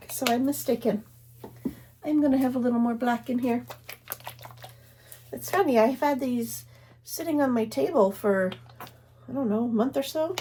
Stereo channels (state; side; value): identical; both; correlation 1.00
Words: so I'm mistaken. I'm going to have a little more black in here. It's funny, I've had these sitting on my table for, I don't know, a month or so.